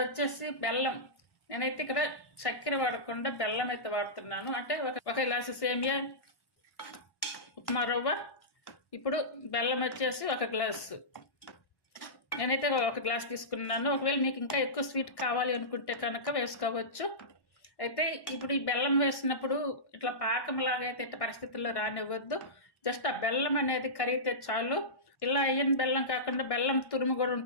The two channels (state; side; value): late; right; 1.1 ms